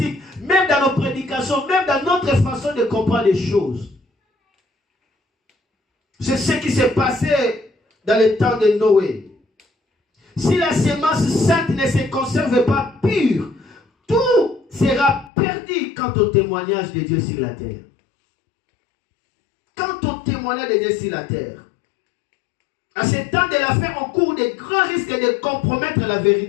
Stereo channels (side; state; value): right; drops out; at 15.3 s